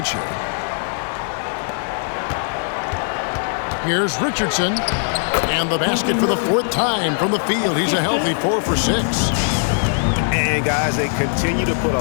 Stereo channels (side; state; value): right; silent; digital silence